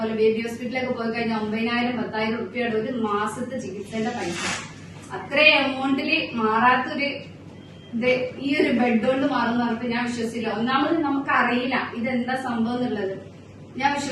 ബേബി ഹോസ്പിറ്റലൊക്കെ പോയി കഴിഞ്ഞാൽ 9,000 10,000 റുപ്യയുടെ ഒരു മാസത്തെ ചികിത്സയുടെ പൈസ. അത്രയും എമൗണ്ടില് മാറാത്തൊരു ഈ ഒരു ബെഡ് കൊണ്ട് മാറുന്ന പറഞ്ഞപ്പോ ഞാൻ വിശ്വസിച്ചില്ല. ഒന്നാമത് നമുക്കറിയില്ല ഇതെന്താ സംഭവം എന്നുള്ളത്. ഞാൻ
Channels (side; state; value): both; identical; correlation 1.00